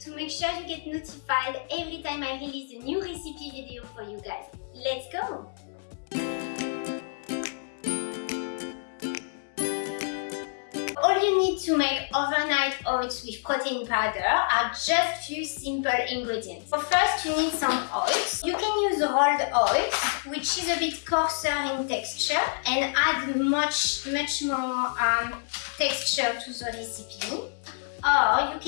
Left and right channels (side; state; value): right; silent; digital silence